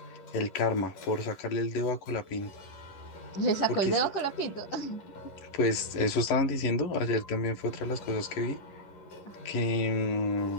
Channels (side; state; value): right; late; 11 ms